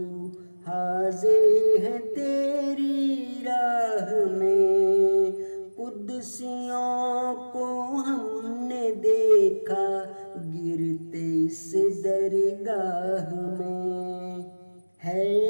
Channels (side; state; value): both; inverted; correlation -1.00